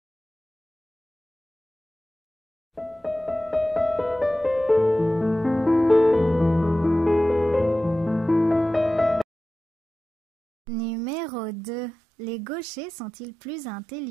Numéro 2. Les gauchers sont-ils plus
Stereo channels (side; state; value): left; drops out; at 9.2 s